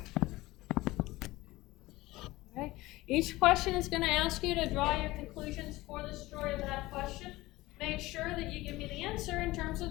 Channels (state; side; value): quieter; right; 19.0 dB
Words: Okay. Each question is going to ask you to draw your conclusions for the story of that question. Make sure that you give me the answer in terms of